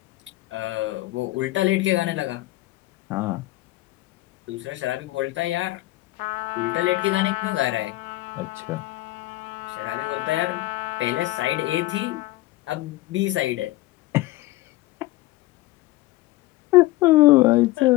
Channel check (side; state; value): right; quieter; 18.2 dB